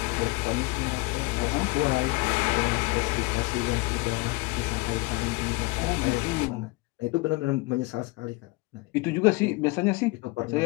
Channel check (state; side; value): quieter; right; 23.8 dB